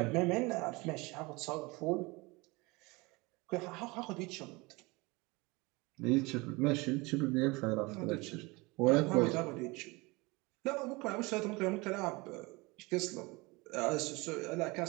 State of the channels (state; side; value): quieter; left; 24.7 dB